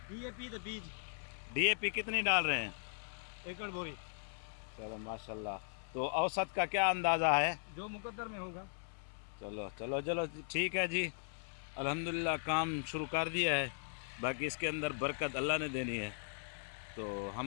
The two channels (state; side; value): silent; right; 52 dB below the other